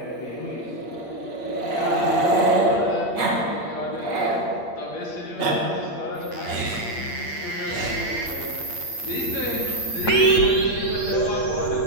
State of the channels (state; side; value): late; right; 8.5 ms